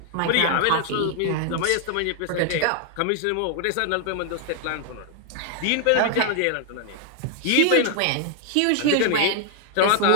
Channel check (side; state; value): both; different; correlation 0.00